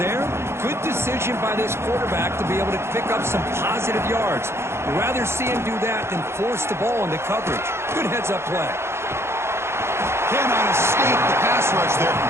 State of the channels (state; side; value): late; left; 0.12 ms